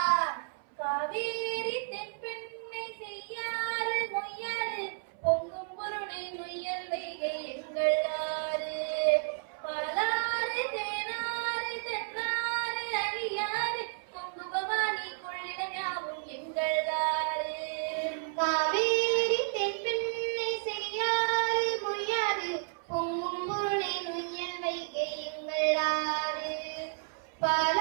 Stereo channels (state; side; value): silent; left; 56 dB below the other